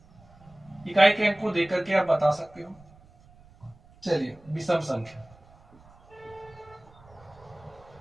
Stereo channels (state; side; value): noise; right; rumble, 26 dB below the sound